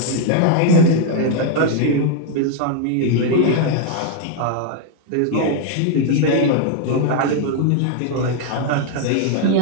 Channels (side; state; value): both; different; correlation 0.00